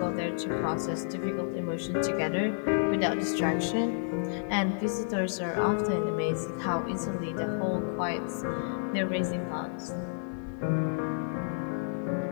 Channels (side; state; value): right; silent; digital silence